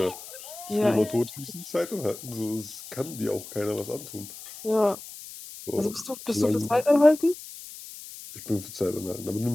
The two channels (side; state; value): left; noise; hiss, 14 dB below the sound